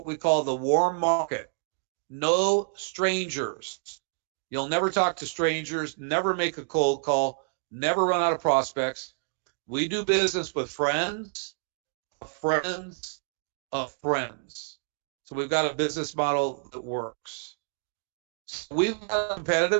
we call the warm market. No strangers. You'll never talk to strangers, never make a cold call, never run out of prospects. We do business with friends of friends of friends. So we've got a business model that works. So we've got a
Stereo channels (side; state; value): left; silent; digital silence